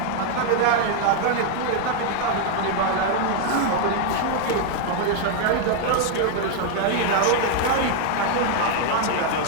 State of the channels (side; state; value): both; different; correlation 0.00